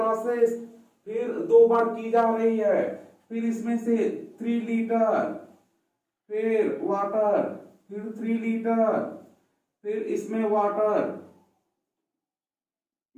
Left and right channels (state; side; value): identical; both; correlation 1.00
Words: फिर 2 बार की जा रही है। फिर इसमें से 3 लीटर, फिर वाटर, फिर 3 लीटर, फिर इसमें वाटर